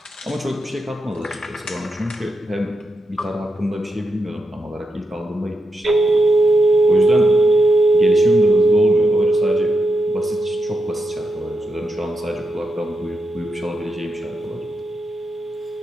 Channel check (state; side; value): normal; both; correlation 0.85